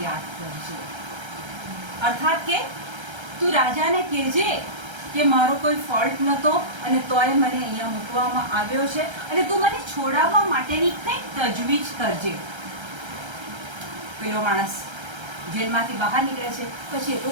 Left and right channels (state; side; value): late; left; 1.3 ms